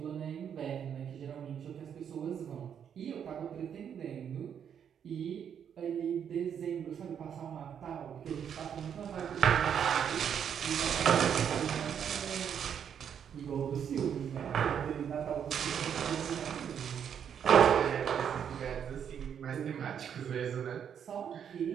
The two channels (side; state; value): left; quieter; 8.3 dB